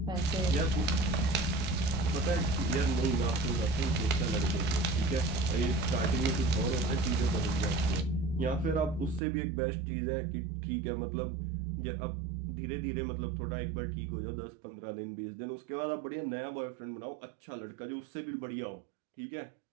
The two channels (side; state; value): left; drops out; at 9.2 s